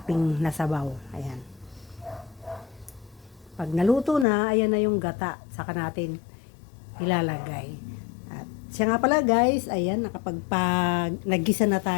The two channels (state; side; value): drops out; right; at 4.2 s